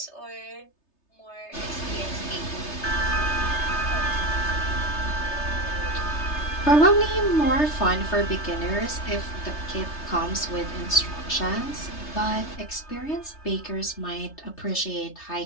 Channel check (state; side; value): late; right; 3.3 ms